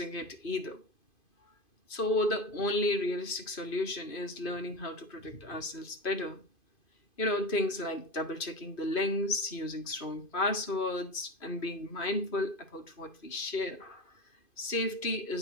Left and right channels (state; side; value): late; right; 2.5 ms